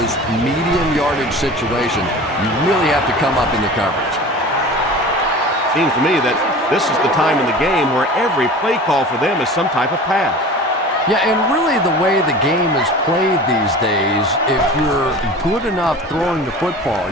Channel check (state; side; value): normal; both; correlation 0.37